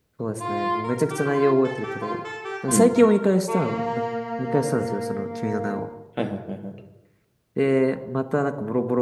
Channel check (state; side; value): identical; both; correlation 1.00